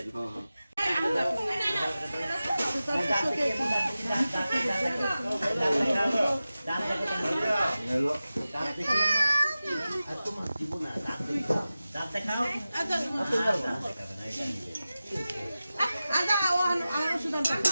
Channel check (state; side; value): inverted; both; correlation -0.95